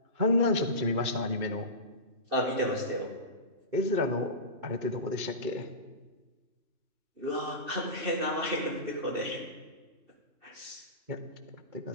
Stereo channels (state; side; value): late; left; 2.6 ms